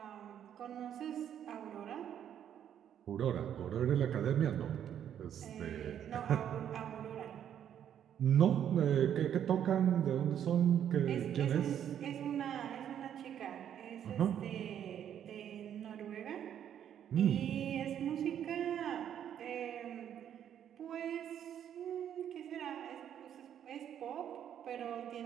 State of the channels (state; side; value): quieter; left; 9.7 dB